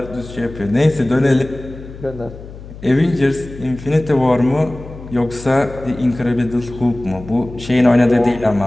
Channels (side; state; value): left; noise; hum, 15 dB below the sound